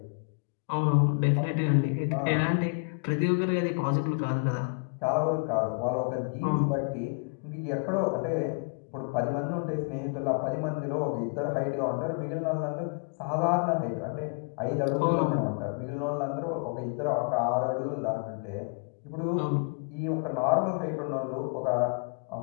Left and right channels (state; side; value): quieter; right; 37.9 dB